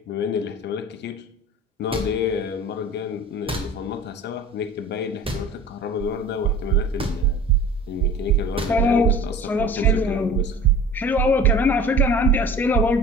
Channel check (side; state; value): both; normal; correlation 0.41